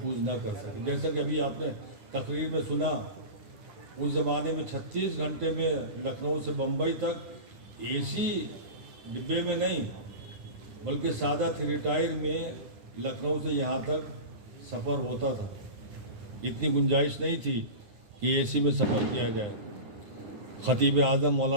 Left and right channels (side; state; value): left; late; 9.6 ms